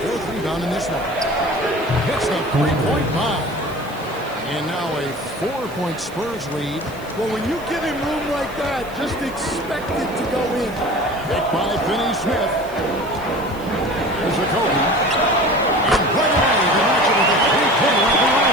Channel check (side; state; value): right; noise; hiss, 22 dB below the sound